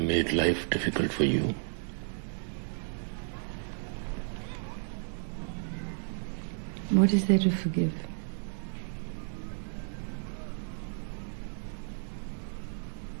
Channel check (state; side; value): silent; left; digital silence